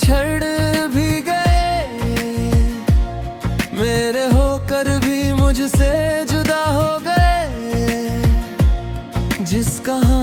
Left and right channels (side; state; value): both; identical; correlation 1.00